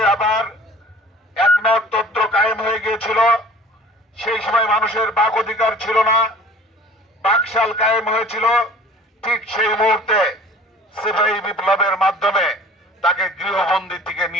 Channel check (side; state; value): both; normal; correlation 0.47